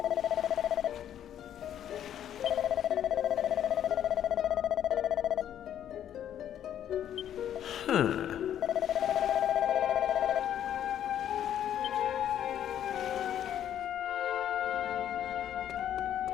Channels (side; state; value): right; quieter; 10.4 dB